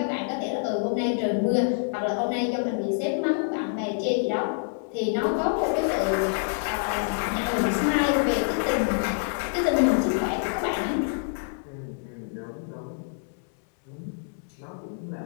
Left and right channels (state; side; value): silent; right; 60 dB below the other